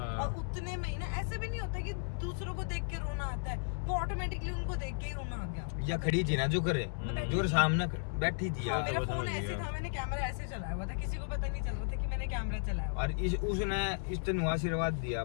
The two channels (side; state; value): right; silent; digital silence